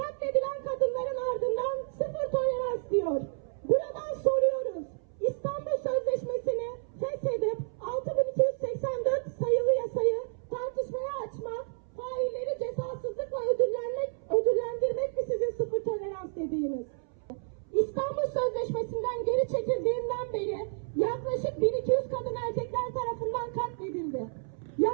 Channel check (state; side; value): silent; left; 57 dB below the other